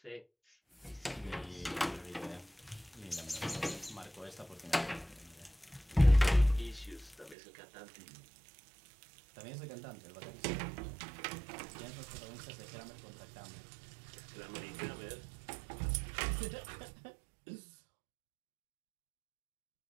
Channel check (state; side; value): drops out; left; at 7.4 s